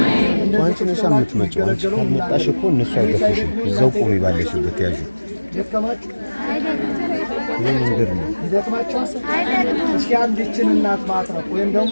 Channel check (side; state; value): both; inverted; correlation -1.00